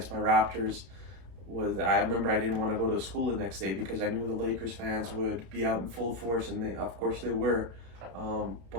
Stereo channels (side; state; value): left; late; 32 ms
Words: my Raptors I remember I didn't want to go to school the next day because I knew the Lakers fans would be out in full force, and of course they were.